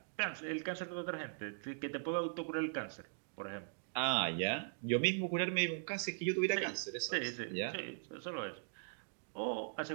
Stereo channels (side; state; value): left; silent; digital silence